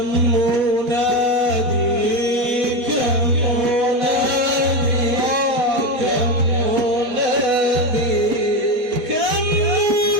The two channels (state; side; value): late; left; 4.0 ms